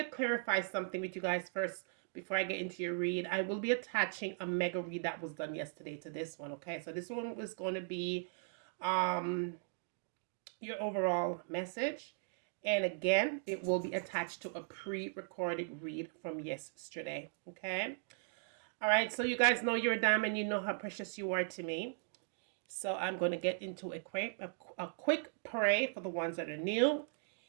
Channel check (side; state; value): left; silent; digital silence